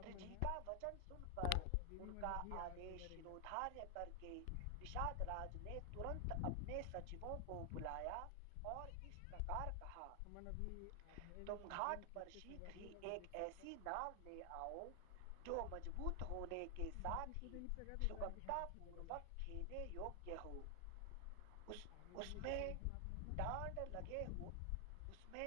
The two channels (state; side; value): different; both; correlation 0.00